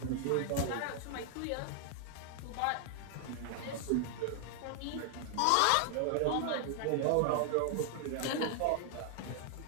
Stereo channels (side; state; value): both; different; correlation 0.00